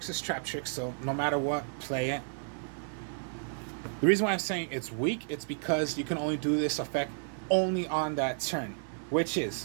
is Traptrix, so no matter what, play it. The reason why I'm saying it's weak, it's because you can only do this effect only on that turn, which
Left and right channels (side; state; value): left; silent; digital silence